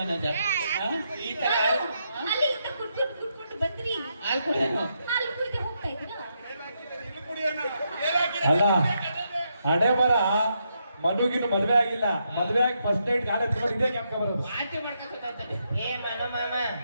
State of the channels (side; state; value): both; inverted; correlation -0.80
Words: ಹಾ? ಈ ತರ ಅಲ್ಲಿಂದ ಕುಟ್ಕೊಂಡು ಬಂದ್ರಿ. ಹಾಲು ಕುಡಿಯೋಣ ಹಾಲು ಕುಡಿದೆ ಹೋಗ್ತಾ ಇದ್ದೀರಾ? ಅಲ್ಲ ಹಣೆ ಬರ ಮನುಗಿನ ಮದ್ವೆ ಆಗಿಲ್ಲ, ಮದ್ವೆ ಆಗಿ ಫಸ್ಟ್ ನೈಟ್ ಕಾಲೇಜ್ ಇದೇ ಕ್ಯಾಂಪ್ ಬರೋದು. ವಾಂತಿ ಮಾಡ್ಕೊಂತ ಏ ಮನು ಮಾಮ